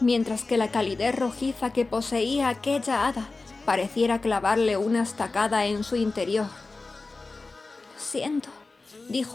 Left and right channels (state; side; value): quieter; right; 3.6 dB